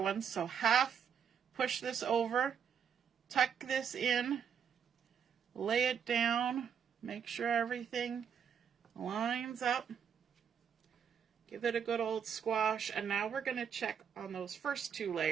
ones. So half push this over, tuck this in, lay it down, make sure everything lines up. Give it a good old squash. And now we're going to check on those first two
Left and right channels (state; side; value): quieter; left; 7.7 dB